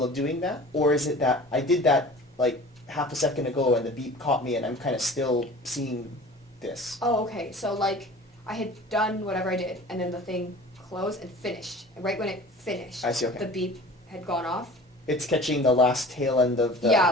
of doing that, or is it that I did that like half a second ago and the beep caught me and I'm kind of still seeing this? Oh, okay. So like I had done whatever I did, and then the thing closed and finished. And right when it finished, I see, okay. the beep had gone off. It's catching the last tail end of the. Yeah,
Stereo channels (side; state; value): both; normal; correlation 0.42